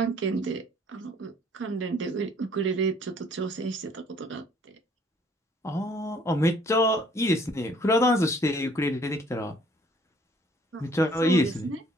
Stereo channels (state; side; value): normal; both; correlation 0.60